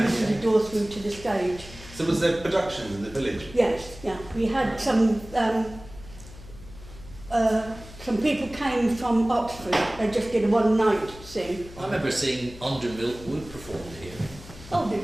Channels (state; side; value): noise; left; hum, 17 dB below the sound